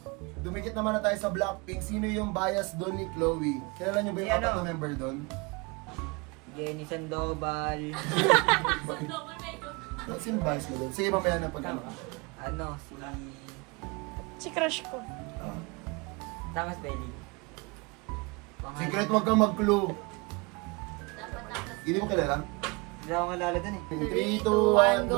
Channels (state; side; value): quieter; left; 27.7 dB